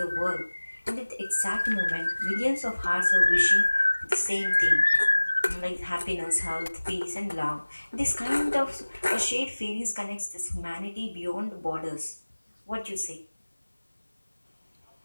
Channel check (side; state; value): both; inverted; correlation -1.00